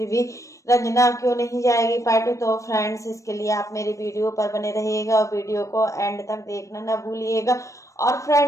भी रंजना क्यों नहीं जाएगी पार्टी? तो फ्रेंड्स, इसके लिए आप मेरे वीडियो पर बने रहिएगा और वीडियो को एंड तक देखना ना भूलिएगा। और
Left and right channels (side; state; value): right; late; 0.15 ms